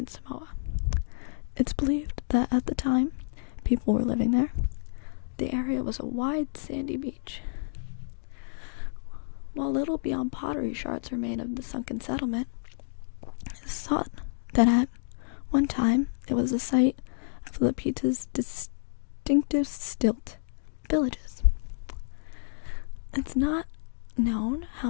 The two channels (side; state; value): right; silent; digital silence